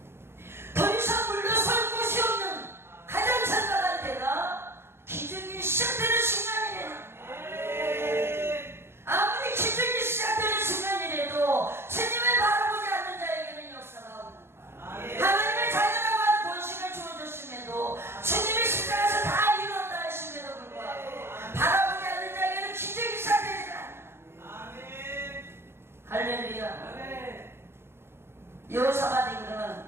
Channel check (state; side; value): late; left; 0.12 ms